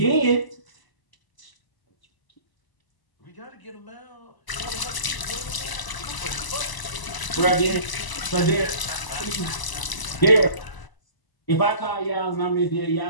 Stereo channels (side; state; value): right; late; 1.0 ms